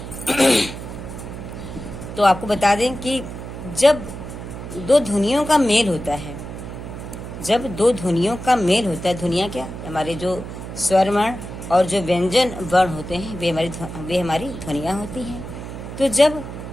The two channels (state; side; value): noise; right; hum, 10 dB below the sound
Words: तो आपको बता दें कि जब दो ध्वनियों का मेल होता है, जब दो ध्वनियों का मेल होता है, ध्वनियाँ क्या, हमारे जो स्वर वर्ण और जो व्यंजन वर्ण होते हैं वे हमारी ध्वनियाँ होती हैं। तो जब